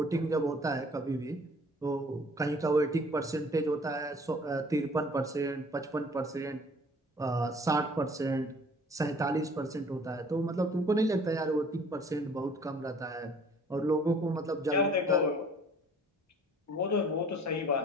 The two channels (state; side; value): normal; both; correlation 0.53